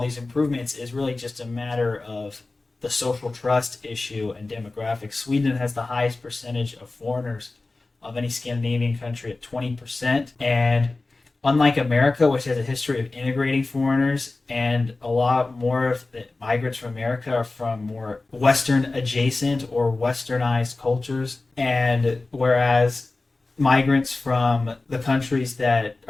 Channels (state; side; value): quieter; right; 3.3 dB